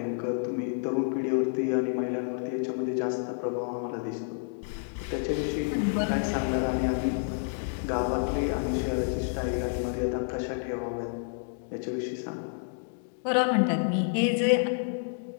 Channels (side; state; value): right; silent; digital silence